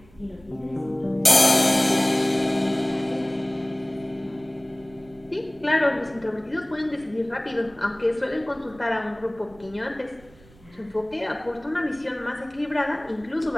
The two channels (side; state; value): right; noise; rumble, 26 dB below the sound